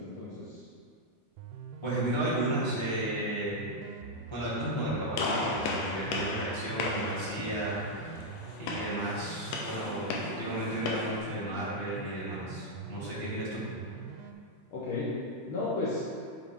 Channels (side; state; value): both; normal; correlation -0.01